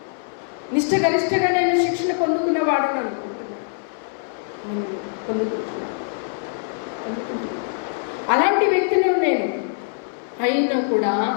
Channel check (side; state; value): right; silent; 60 dB below the other